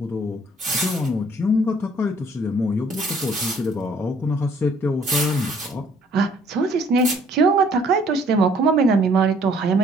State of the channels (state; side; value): normal; both; correlation 0.60